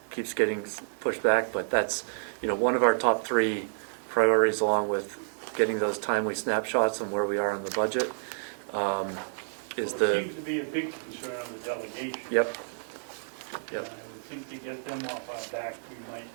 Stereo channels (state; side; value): silent; left; 58 dB below the other